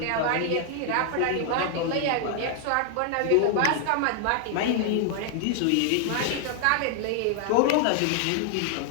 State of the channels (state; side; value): different; both; correlation 0.00